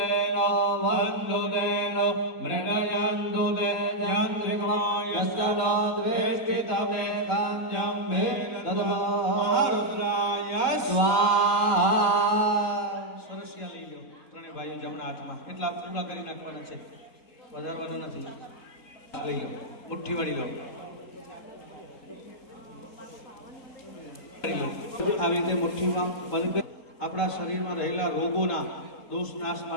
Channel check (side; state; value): right; late; 3.8 ms